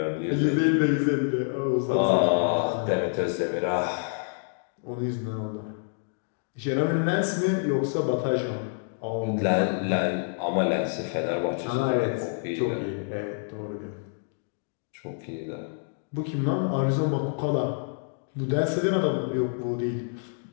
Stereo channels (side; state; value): right; silent; digital silence